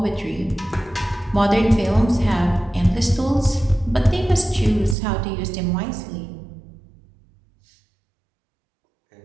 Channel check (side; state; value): left; drops out; at 5.0 s